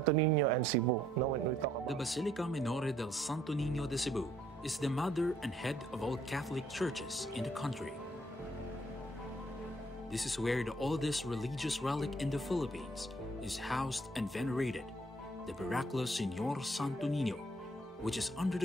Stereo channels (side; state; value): both; normal; correlation 0.66